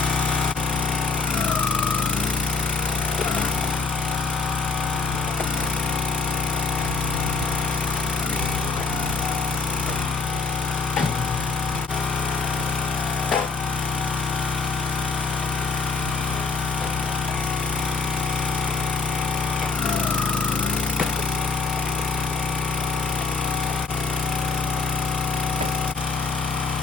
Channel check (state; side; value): quieter; right; 4.3 dB